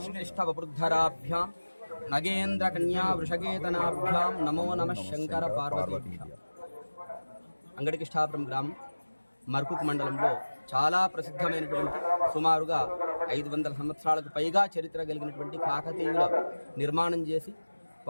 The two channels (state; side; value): inverted; both; correlation -1.00